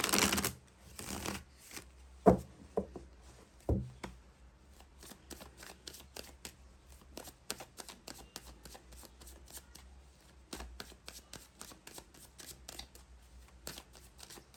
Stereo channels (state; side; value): identical; both; correlation 1.00